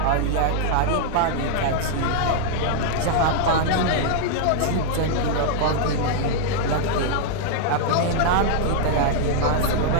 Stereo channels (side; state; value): both; different; correlation -0.01